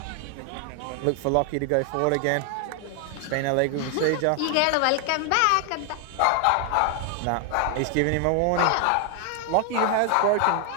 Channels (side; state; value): both; different; correlation 0.00